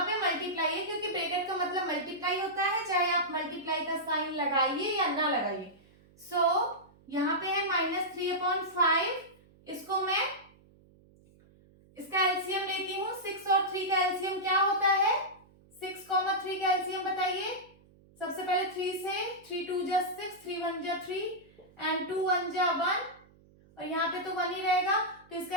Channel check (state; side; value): noise; right; hum, 28 dB below the sound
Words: पे मल्टीप्लाई है क्योंकि ब्रैकेट का मतलब मल्टीप्लाई होता है, चाहे आप मल्टीप्लाई का साइन लगाइए या ना लगाइए। सो यहाँ पे है -3/5, इसको मैं इसका एलसीएम लेती हूँ। 6 और 3 का एलसीएम क्या होता है? 6, 3 का एलसीएम बताइए। सबसे पहले 3 से 3 2 जा 6, 3 1 जा 3 एंड 2 1 जा 1, और यहाँ पे तो 1 ही रहेगा तो